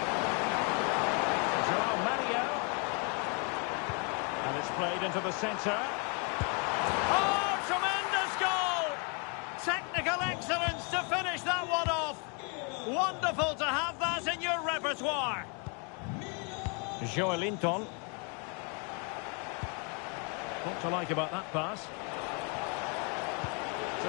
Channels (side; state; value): right; quieter; 35.7 dB